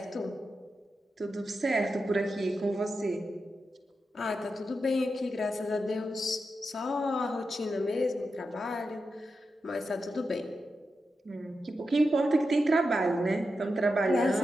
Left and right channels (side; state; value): both; normal; correlation 0.89